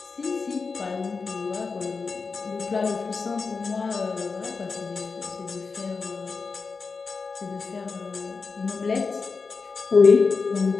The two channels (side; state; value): right; quieter; 4.7 dB